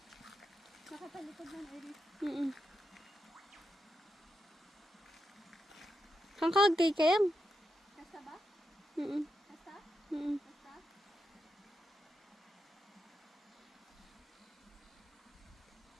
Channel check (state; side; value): normal; both; correlation 0.86